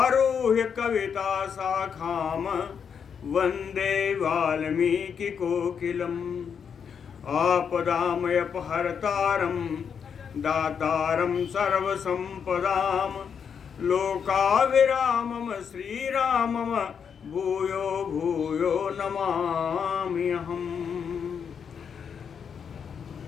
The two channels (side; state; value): right; quieter; 7.0 dB